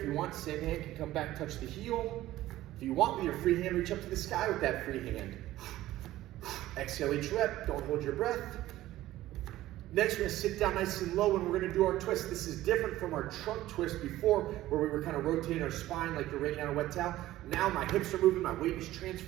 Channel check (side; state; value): left; quieter; 15.3 dB